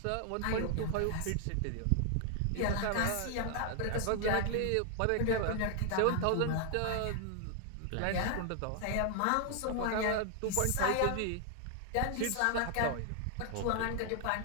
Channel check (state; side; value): different; both; correlation 0.00